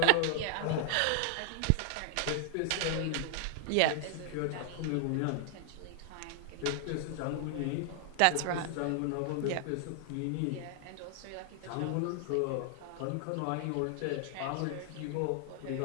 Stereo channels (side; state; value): both; different; correlation 0.00